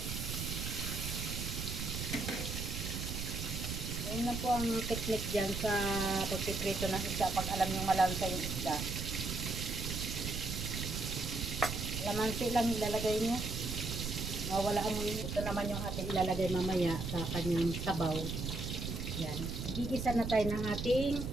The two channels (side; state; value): right; noise; rumble, 4 dB below the sound